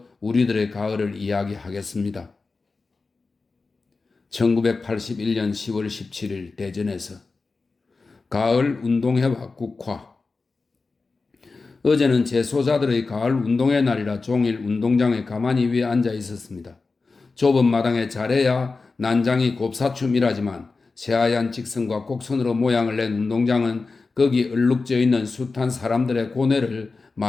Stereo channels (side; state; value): right; quieter; 4.0 dB